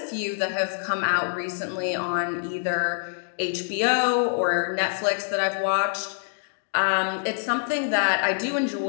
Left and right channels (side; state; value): right; silent; digital silence